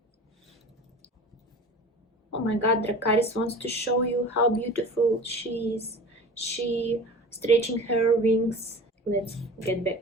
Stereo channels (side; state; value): both; normal; correlation 0.38